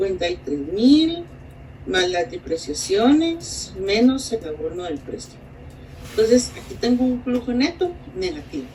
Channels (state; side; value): identical; both; correlation 1.00